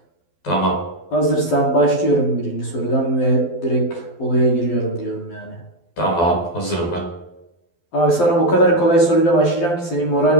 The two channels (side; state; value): right; late; 12 ms